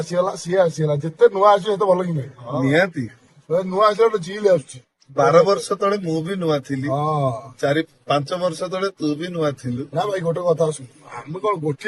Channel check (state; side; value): identical; both; correlation 1.00